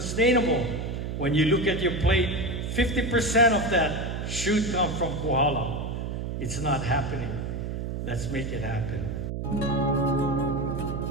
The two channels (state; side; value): noise; right; hum, 4 dB below the sound